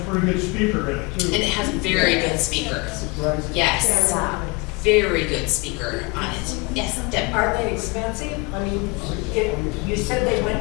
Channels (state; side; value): quieter; right; 27.4 dB